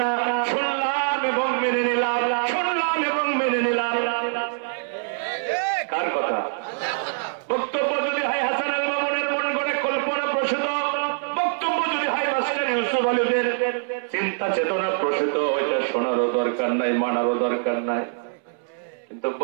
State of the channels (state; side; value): silent; left; 63 dB below the other